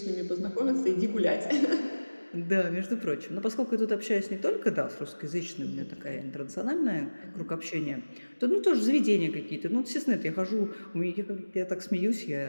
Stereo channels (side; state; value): both; inverted; correlation -1.00